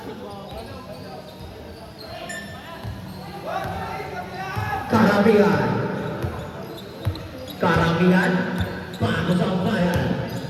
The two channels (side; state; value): both; identical; correlation 1.00